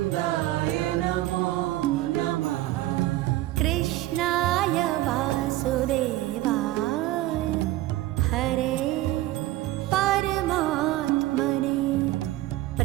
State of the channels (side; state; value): left; quieter; 16.3 dB